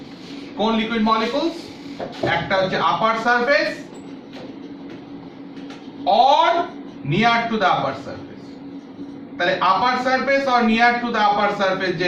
কোন লিকুইড মলিকুলস? একটা হচ্ছে upper surface or near to the upper surface। তাহলে upper surface or near to the upper surface যে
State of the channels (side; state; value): both; identical; correlation 1.00